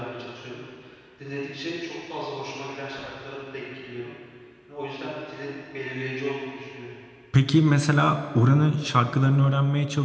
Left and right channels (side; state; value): both; identical; correlation 1.00